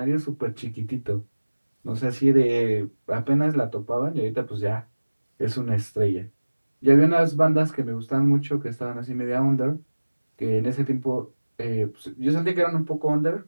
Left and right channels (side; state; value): both; inverted; correlation -1.00